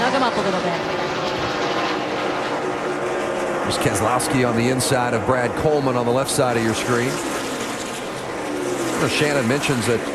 him up a little bit. There's Keselowski on the inside of Brad Coleman on the left side of your screen. Shannon mentions that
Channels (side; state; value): both; identical; correlation 1.00